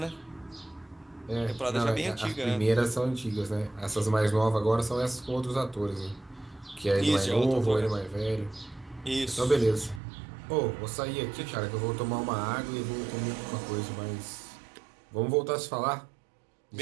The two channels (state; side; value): drops out; left; at 10.0 s